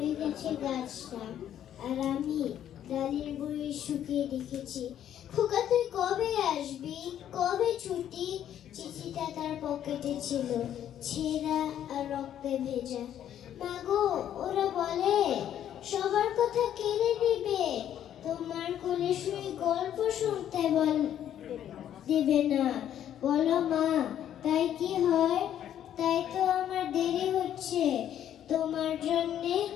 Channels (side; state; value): right; quieter; 10.5 dB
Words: গেছে গাছটা, আর আমি ডালের বড়ি শুকিয়ে রেখেছি। খোকা তুই কবে আসবি, কবে ছুটি? চিঠিটা তার পকেটে ছিল, ছেঁড়া আর রক্তে ভেজা। মাগো, ওরা বলে সবার কথা কেড়ে নেবে, তোমার কোলে শুয়ে গল্প শুনতে দেবে না। বলো মা, তাই কি হয়? তাই তো আমার দেরি হচ্ছে তোমার জন্যে